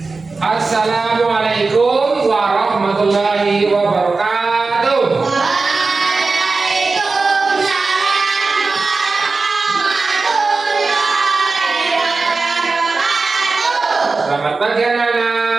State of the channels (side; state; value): left; quieter; 4.0 dB